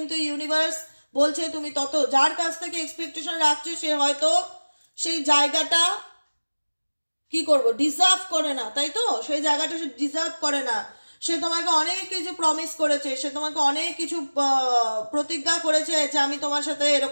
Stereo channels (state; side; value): inverted; both; correlation -1.00